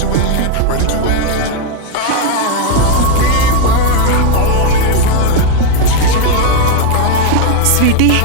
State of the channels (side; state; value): both; different; correlation 0.01